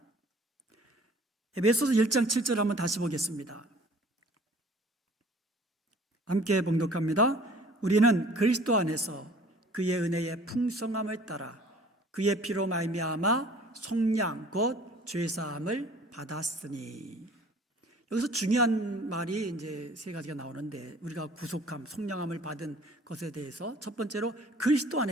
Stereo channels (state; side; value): normal; both; correlation 0.51